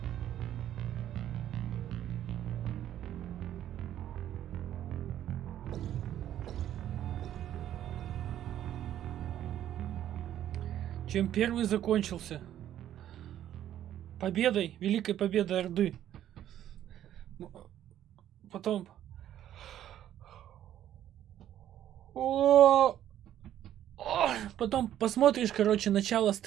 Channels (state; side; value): quieter; left; 11.5 dB